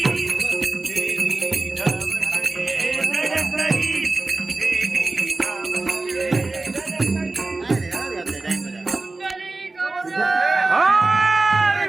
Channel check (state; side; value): quieter; left; 3.3 dB